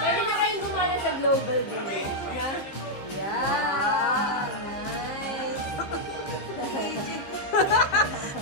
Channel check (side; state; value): right; late; 15 ms